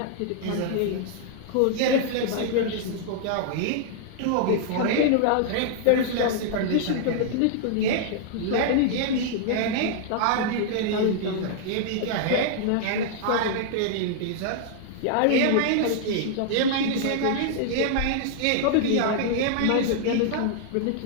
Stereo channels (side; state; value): both; different; correlation -0.01